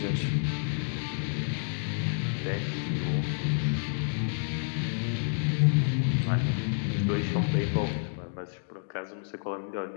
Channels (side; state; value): right; silent; digital silence